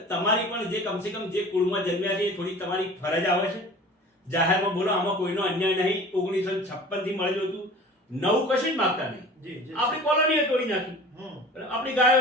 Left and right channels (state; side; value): normal; both; correlation 0.42